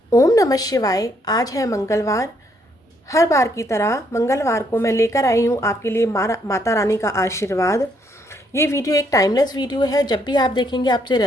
ओम नमः शिवाय। आज है मंगलवार। हर बार की तरह मंगलवार को मैं लेकर आई हूँ आपके लिए माता रानी का आशीर्वाद। ये वीडियो एक टाइमलेस वीडियो है, जब भी आप देखेंगे आपसे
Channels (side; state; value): both; normal; correlation 0.71